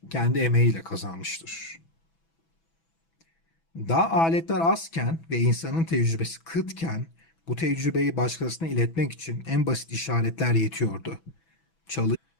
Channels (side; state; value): right; late; 6.1 ms